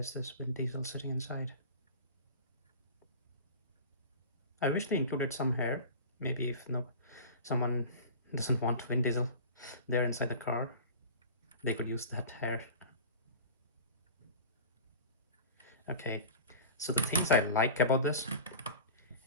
this Vin Diesel sitting inside. I wish they included some hair. Maybe if someone doesn't want Vin Diesel there inside the car, they could use that hair. Okay, so the things I like about this,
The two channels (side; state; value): both; inverted; correlation -0.35